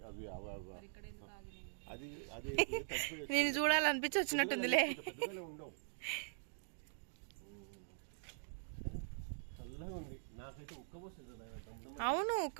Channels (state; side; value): silent; left; digital silence